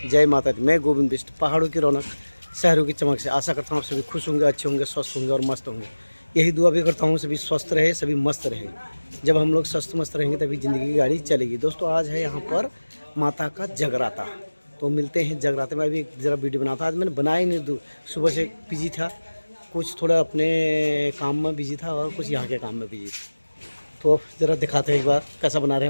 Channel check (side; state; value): both; inverted; correlation -1.00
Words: जय माता दी। मैं गोविंद बिष्ट। पहाड़ों की रौनक, शहरों की चमक से आशा करता हूँ आप सभी खुश होंगे, अच्छे होंगे, स्वस्थ होंगे और मस्त होंगे। यही दुआ भी करता हूँ सभी स्वस्थ रहे, सभी मस्त रहे। जब हम लोग स्वस्थ मस्त रहेंगे तभी ज़िंदगी की गाड़ी चलेगी। दोस्तों आज है यहाँ पर माता का जगराता, तो मिलते हैं जगराते में। अभी ज़रा वीडियो बनाता, आज मैंने बनाया नहीं, सुबह से बिजी था, कुछ थोड़ा अपने काम में बिजी था और कुछ यहाँ के काम में बिजी था। तो ज़रा दिखाते हैं एक बार कैसा बना रहे